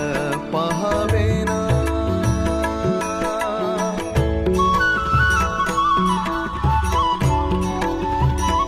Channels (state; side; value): identical; both; correlation 1.00